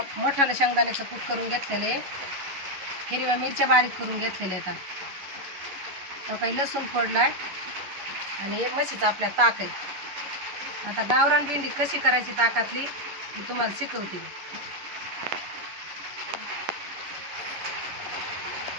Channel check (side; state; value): left; late; 11 ms